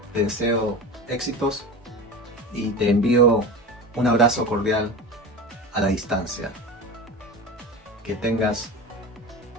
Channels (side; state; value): both; normal; correlation 0.29